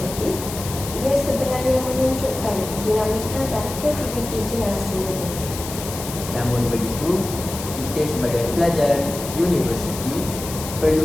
ia sebenarnya menunjukkan dinamika dan kreativiti generasi muda. Namun begitu, kita sebagai pelajar universiti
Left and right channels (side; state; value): left; noise; hiss, 10 dB below the sound